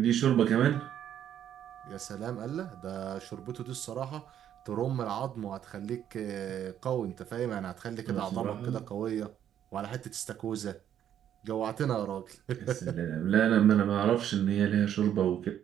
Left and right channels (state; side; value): quieter; left; 10.1 dB